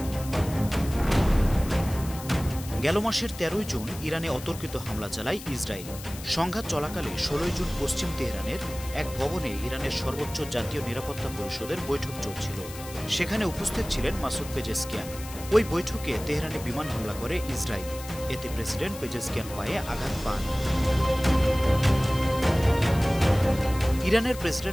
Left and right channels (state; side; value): noise; left; hiss, 14 dB below the sound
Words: গেল মাসের ১৩ জুন ইরানে অতর্কিত হামলা চালায় ইসরায়েল। সংঘাত চলাকালে ১৬ জুন পশ্চিম তেহরানের এক ভবনে ইরানের সর্বোচ্চ জাতীয় নিরাপত্তা পরিষদের বৈঠক চলছিল। সেখানে উপস্থিত ছিলেন মাসুদ পেজেশকিয়ান। ওই বৈঠকে তেহরানে বিমান হামলা করে ইসরায়েল। এতে প্রেসিডেন্ট পেজেশকিয়ান পায়ে আঘাত পান। ইরানের